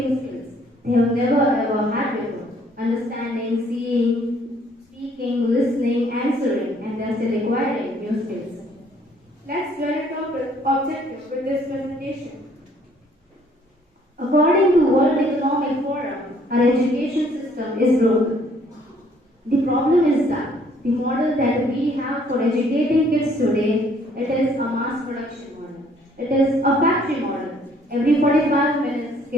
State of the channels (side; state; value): both; normal; correlation 0.62